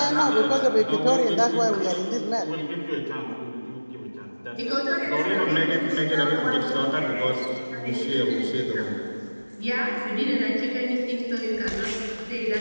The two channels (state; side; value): inverted; both; correlation -1.00